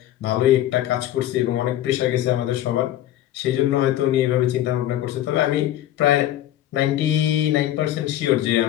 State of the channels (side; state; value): right; quieter; 13.0 dB